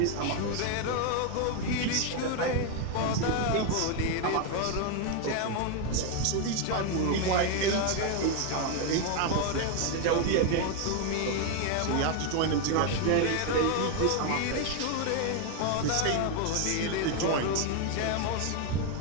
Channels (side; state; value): both; different; correlation 0.01